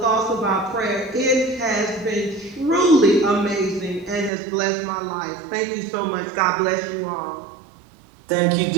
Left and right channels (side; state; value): left; drops out; at 4.3 s